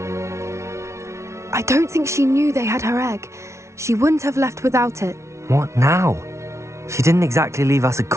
I don't think she knew they had her egg. She wouldn't have left without it. What now? She didn't exactly leave us a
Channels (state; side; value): late; left; 0.13 ms